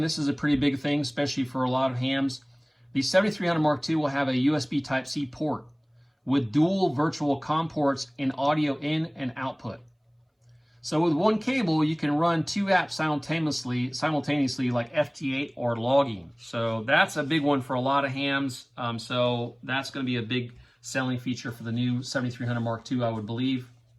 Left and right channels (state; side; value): identical; both; correlation 1.00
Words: this is a pretty big thing, especially for a lot of hams, the 7300 Mark II will have a USB Type-C port with dual virtual COM ports and audio in and output. So with one cable, you can run 2 apps simultaneously like FT8 or logging. So that's a big one for a lot of hams. So that's going to be a big selling feature for the new 7300 Mark II, I would believe.